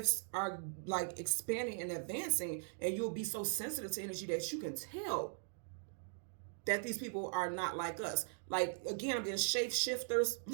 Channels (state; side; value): silent; left; digital silence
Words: are like expanding and advancing, and you'll be so sensitive to energy that you can tell that these people are not like us. Like, again, I'm getting shapeshifters